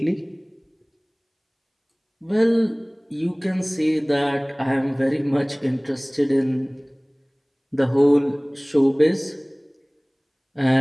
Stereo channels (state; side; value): identical; both; correlation 1.00